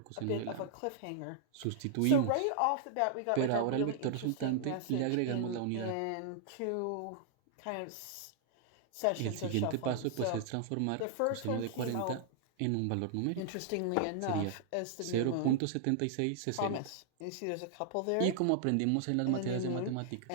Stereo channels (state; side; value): different; both; correlation -0.01